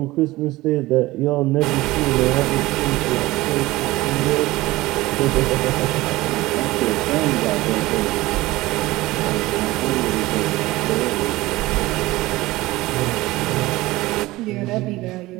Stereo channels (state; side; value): quieter; left; 19.0 dB